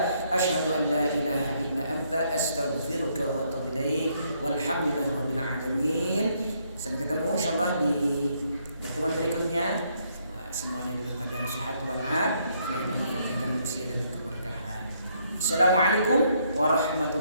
asyhadu an la ilaha illa anta astaghfiruka wa atubu ilaik. Walhamdulillahi rabbil alamin. Sampai ketemu insyaallah di pertemuan berikutnya. Semuanya dalam keadaan sehat walafiat, Allah berikan usia dan keberkahan. Assalamualaikum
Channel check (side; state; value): both; inverted; correlation -0.72